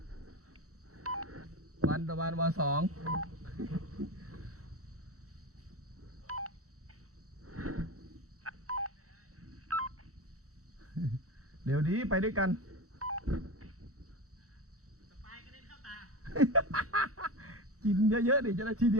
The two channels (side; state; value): left; late; 0.65 ms